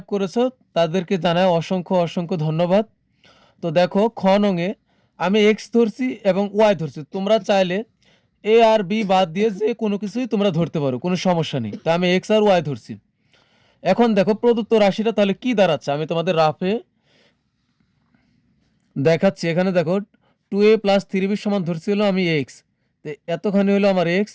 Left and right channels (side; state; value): both; identical; correlation 1.00